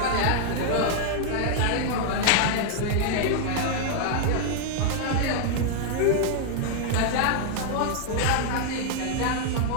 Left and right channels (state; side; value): different; both; correlation -0.01